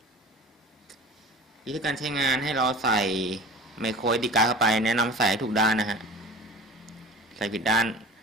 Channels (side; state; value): both; normal; correlation 0.39